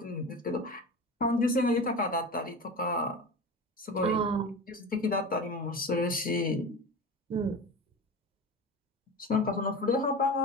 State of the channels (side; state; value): both; normal; correlation 0.30